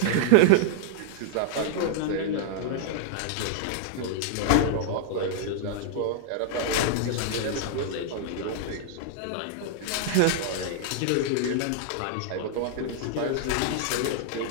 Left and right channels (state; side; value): different; both; correlation -0.01